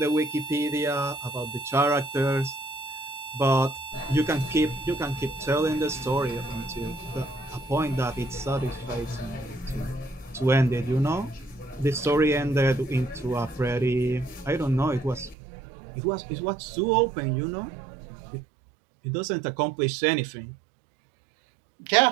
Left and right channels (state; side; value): drops out; left; at 15.4 s